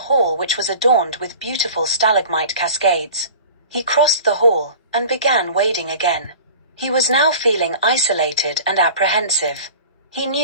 which was adorned with beautiful stalagmite cascades. He crossed the hall, and began wading again. He was now feeling isolated and apprehensive. He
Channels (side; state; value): both; inverted; correlation -0.40